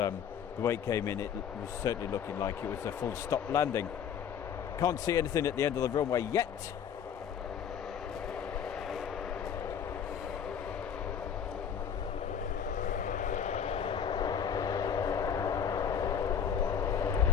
way it came in, it was certainly looking like it was a full stop landing. Can't see anything at the end of the runway yet.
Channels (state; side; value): quieter; right; 8.0 dB